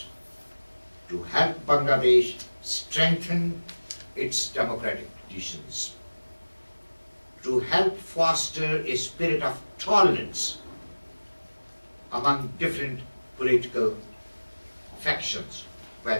to help Bangladesh strengthen its democratic traditions, to help foster a spirit of tolerance among different political factions,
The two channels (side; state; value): both; inverted; correlation -1.00